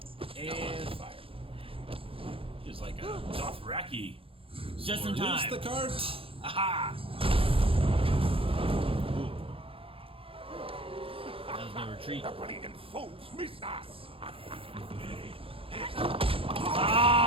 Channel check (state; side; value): late; left; 0.27 ms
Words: And fire. Just like a Dothraki. Just in Use time. the cart. Aha! That was no retreat. The bleeding fools miss us!